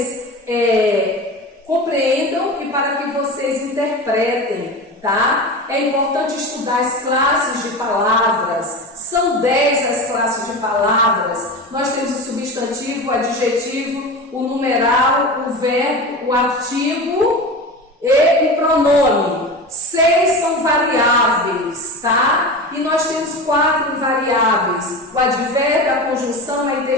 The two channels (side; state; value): both; normal; correlation 0.28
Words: compreendam e para que vocês interpretem. Tá? É importante estudar as classes de palavras. São 10 as classes de palavras. Nós temos o substantivo, o adjetivo, o numeral, o verbo, o artigo e o pronome. 6 são variáveis, tá? E nós temos 4 invariáveis: o advérbio, a conjunção, a